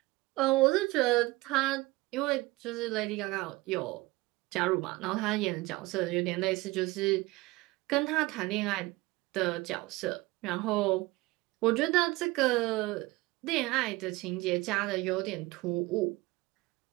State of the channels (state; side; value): quieter; left; 21.0 dB